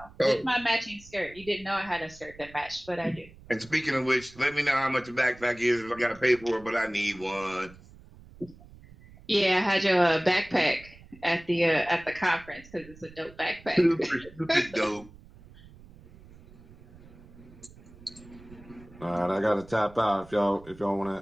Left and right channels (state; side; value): noise; right; rumble, 21 dB below the sound